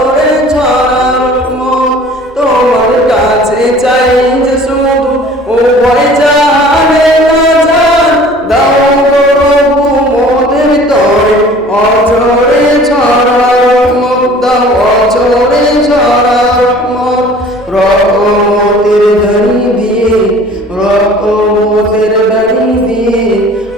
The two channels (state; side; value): normal; both; correlation 0.48